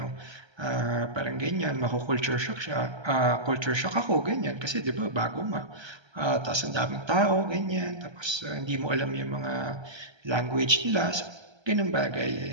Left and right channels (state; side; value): late; left; 1.3 ms